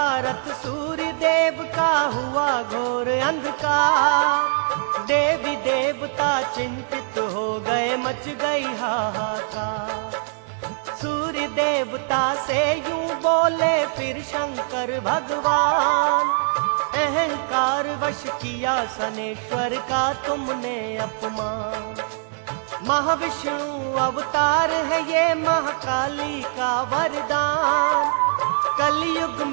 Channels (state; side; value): silent; left; 60 dB below the other